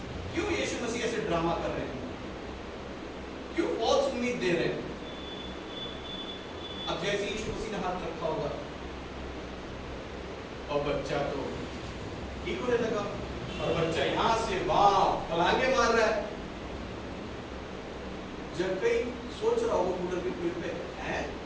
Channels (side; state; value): both; identical; correlation 1.00